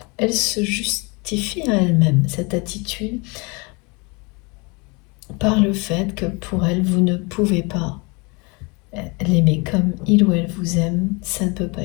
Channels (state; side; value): quieter; right; 29.0 dB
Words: elle se justifie à elle-même cette attitude par le fait que pour elle, vous ne pouvez pas l'aimer comme il ou elle vous aime, ça ne peut pas